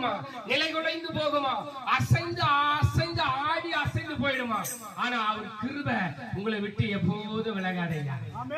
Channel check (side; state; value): both; identical; correlation 1.00